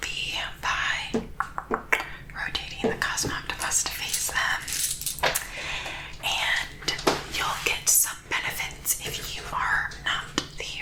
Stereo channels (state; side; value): identical; both; correlation 1.00